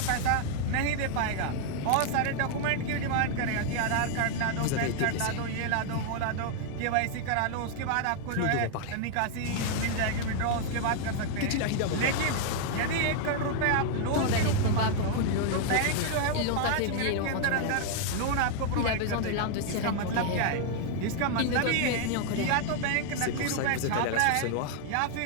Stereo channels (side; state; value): both; different; correlation 0.00